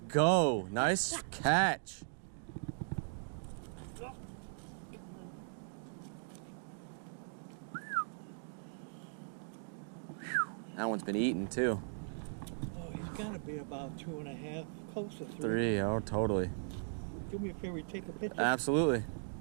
go. Nice catch. That one's been eaten too. Oh, he's got to be about 2.5, close to 3. 3, oh, totally. do me a favor, take a picture. Absolutely.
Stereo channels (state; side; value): silent; left; digital silence